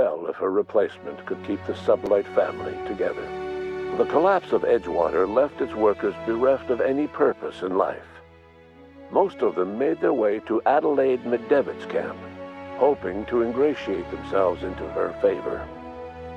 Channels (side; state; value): both; identical; correlation 1.00